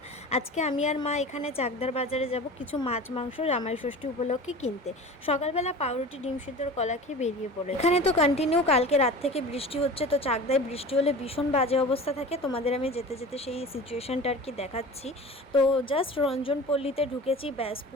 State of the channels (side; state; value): both; normal; correlation 0.36